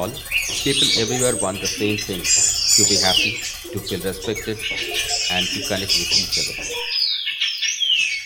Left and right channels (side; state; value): both; identical; correlation 1.00